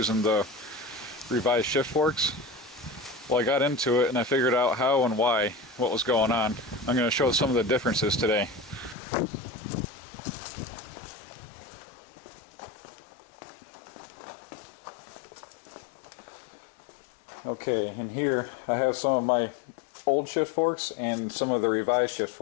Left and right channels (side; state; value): right; drops out; at 9.0 s